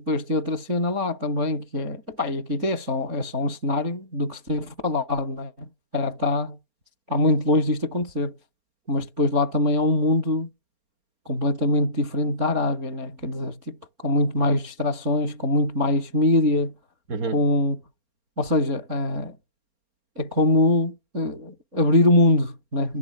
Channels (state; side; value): late; left; 4.3 ms